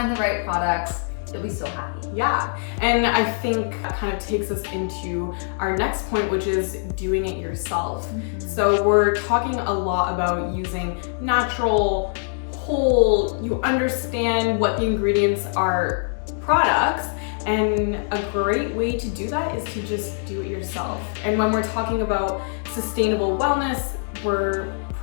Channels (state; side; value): silent; right; digital silence